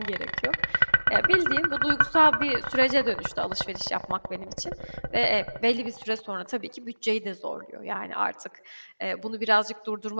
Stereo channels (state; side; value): inverted; both; correlation -1.00